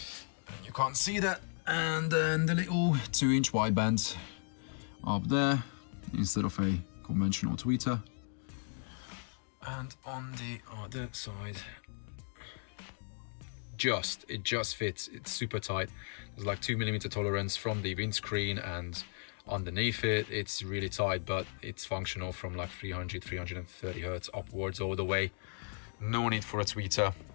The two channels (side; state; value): right; silent; 54 dB below the other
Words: You can't see that. And then the little 2-inch wideband up there instead of a conventional tweeter. And on the other side, it just fits. It's super tight. There's like 2mm tolerance from the windscreen, and underneath it, it's really tight, but it's functional from like 330 hertz upwards all the way. No need for a tweeter.